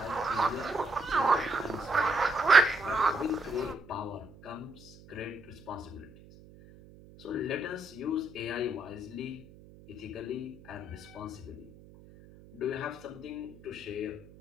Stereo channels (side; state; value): right; noise; hum, 21 dB below the sound